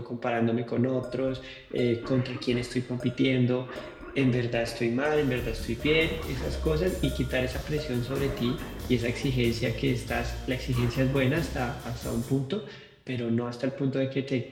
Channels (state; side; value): identical; both; correlation 1.00